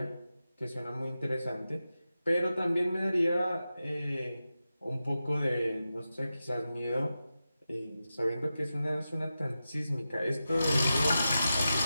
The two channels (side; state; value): both; inverted; correlation -0.92